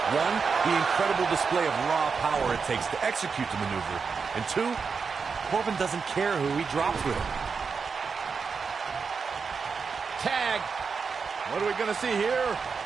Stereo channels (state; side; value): quieter; left; 5.4 dB